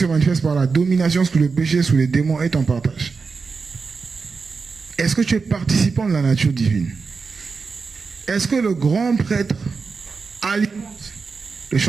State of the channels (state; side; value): quieter; left; 4.8 dB